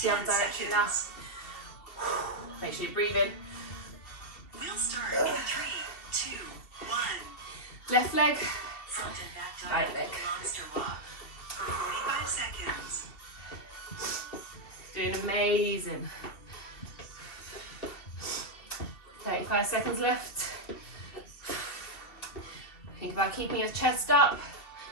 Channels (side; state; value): right; late; 2.7 ms